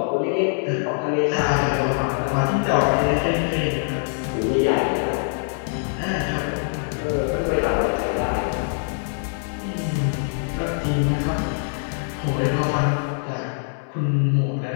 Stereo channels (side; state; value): right; silent; 63 dB below the other